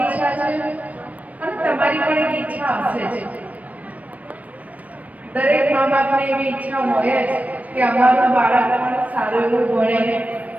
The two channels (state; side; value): late; left; 0.069 ms